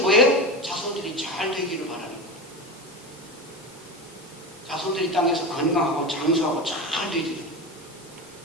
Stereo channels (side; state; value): both; normal; correlation 0.24